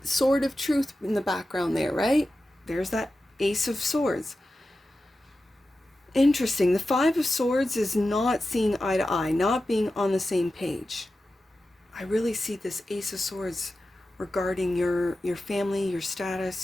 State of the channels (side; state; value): both; normal; correlation 0.93